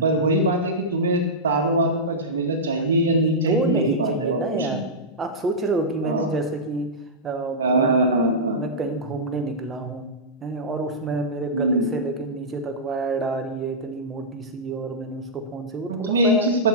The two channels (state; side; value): normal; both; correlation -0.14